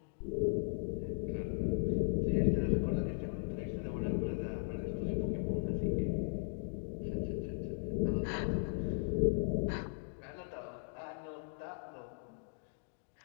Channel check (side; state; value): right; silent; digital silence